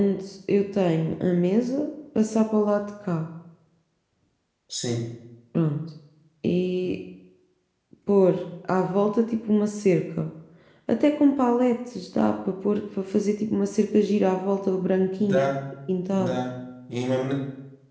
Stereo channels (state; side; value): identical; both; correlation 1.00